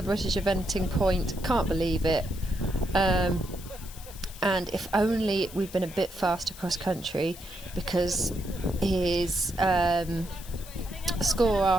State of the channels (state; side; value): noise; left; hiss, 17 dB below the sound